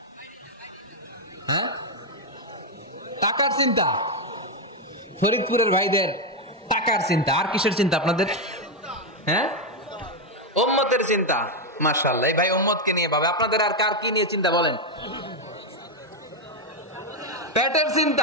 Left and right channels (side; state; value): both; normal; correlation 0.03